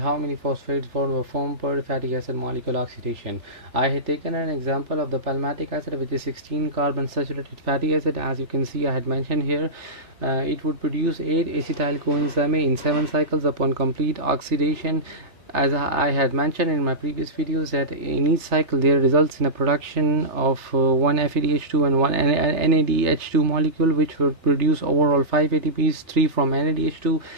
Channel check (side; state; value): left; late; 3.3 ms